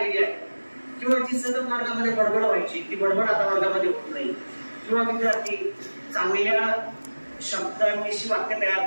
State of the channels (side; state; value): both; inverted; correlation -1.00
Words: आहे किंवा जी सतत वर्गामध्ये बडबड व्हायची ती बडबड आता वर्गामध्ये होत नाही. किंवा विद्यार्थी चांगल्या शब्दांविषयी वाक्य